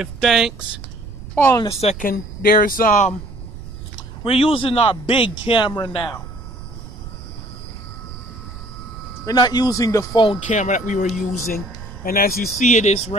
thanks. Hold on a second. We're using our big camera now. We're not using the phone camera that we were using. And as you see, it is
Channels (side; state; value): right; noise; rumble, 13 dB below the sound